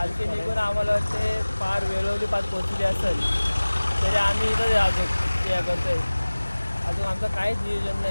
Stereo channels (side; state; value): both; inverted; correlation -1.00